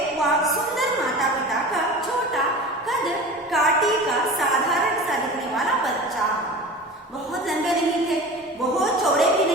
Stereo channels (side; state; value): both; normal; correlation 0.35